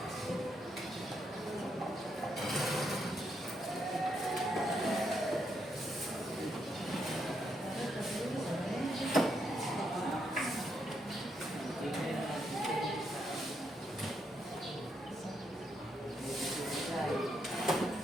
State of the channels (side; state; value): both; normal; correlation 0.78